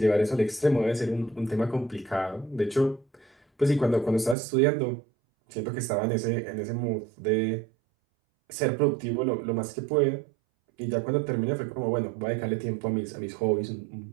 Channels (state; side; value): drops out; left; at 4.4 s